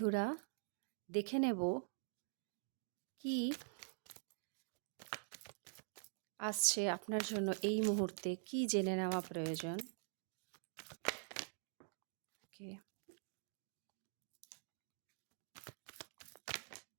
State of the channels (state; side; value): silent; left; digital silence